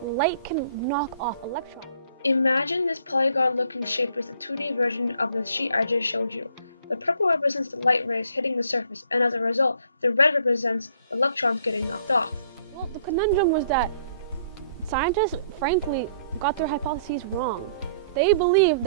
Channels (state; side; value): inverted; both; correlation -0.60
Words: light can knock off electrons. Imagine this polygon-looking shape is the 2D version of the sheet I just showed you. The purple represents the light rays hitting the surface, and as a result, the red represents electrons getting knocked off. Well, the conundrum was that scientists, frankly, got their hypotheses wrong. They believed